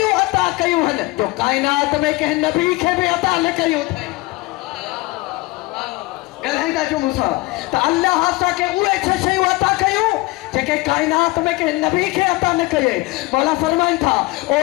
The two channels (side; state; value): right; quieter; 21.9 dB